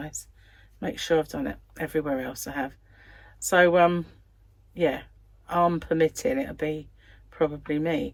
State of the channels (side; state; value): both; identical; correlation 1.00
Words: Make sure I've done it. Everywhere else I have. So yeah, arm permitting, it'll be probably me.